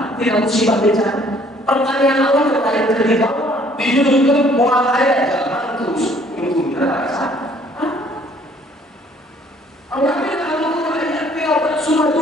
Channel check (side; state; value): both; normal; correlation 0.59